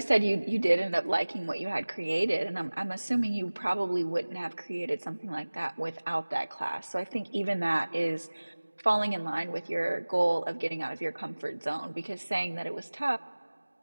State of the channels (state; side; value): inverted; both; correlation -1.00